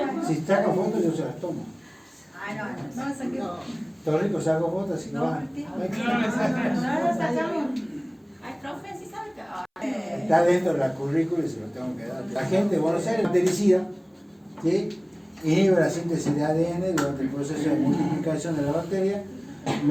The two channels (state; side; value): identical; both; correlation 1.00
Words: si saca fotos yo se las tomo. Ay, no, No, esa que... Doctor Rico saco fotos, así que No, va. Martín. no lo sacamos. Ay, profe, sí sabe que... Está dentro de la currícula y se lo tengo que dar. La gente de Buenos Aires bactericida, ¿sí? Inhibe la síntesis de ADN durante el proceso de multiplicación de la bacteria